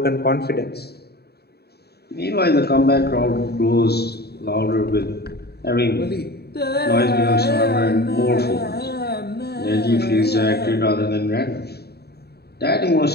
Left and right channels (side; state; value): right; late; 0.47 ms